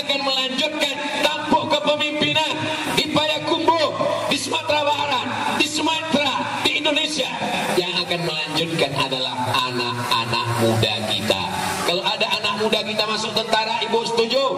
melanjutkan tampuk kepemimpinan di Payakumbuh, di Sumatera Barat, di Sumatera, di Indonesia? Yang akan melanjutkan adalah anak-anak muda kita. Kalau ada anak muda kita masuk tentara, ibu setuju?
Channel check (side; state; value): both; identical; correlation 1.00